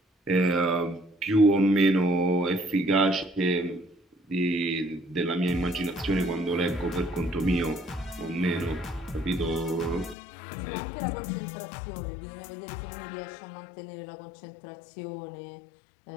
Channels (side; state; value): right; drops out; at 10.2 s